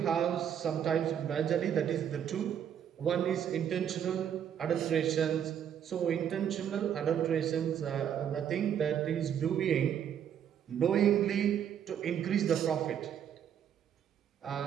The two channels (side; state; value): left; quieter; 9.0 dB